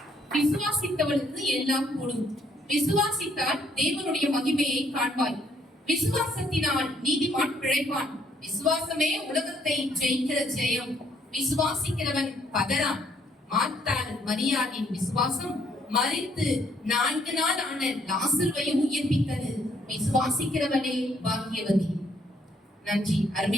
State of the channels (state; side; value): normal; both; correlation 0.68